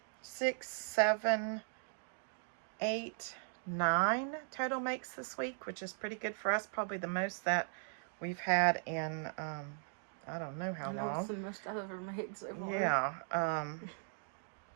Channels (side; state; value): left; silent; digital silence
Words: 6, 7, 8, 9 total makes this week, which is pretty good for us. Probably the most that we've had in I don't know how long. That's the most I've ever made so far. Yeah.